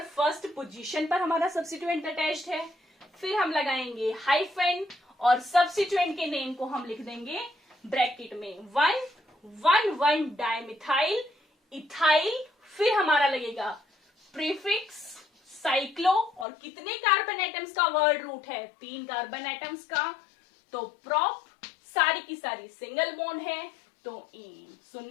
फर्स्ट पोजीशन पर हमारा सब्स्टिट्यूएंट अटैच्ड है। फिर हम लगाएंगे हाइफन और सब्स्टिट्यूएंट के नेम को हम लिख देंगे ब्रैकेट में 1 डाइमिथाइल इथाइल। फिर हमारा लगेगा प्रीफिक्स साइक्लो, और कितने कार्बन एटम्स का वर्ड रूट है, 3 कार्बन एटम्स का। तो प्रोप सारी की सारी सिंगल बॉन्ड है, तो ane. So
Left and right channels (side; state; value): right; drops out; at 16.4 s